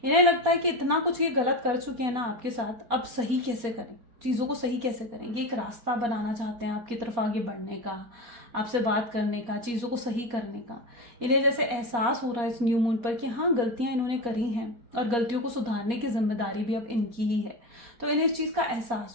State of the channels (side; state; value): left; late; 4.2 ms